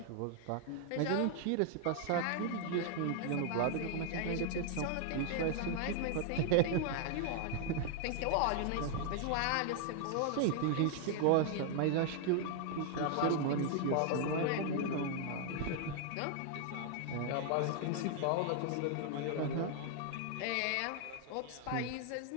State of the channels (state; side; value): different; both; correlation 0.00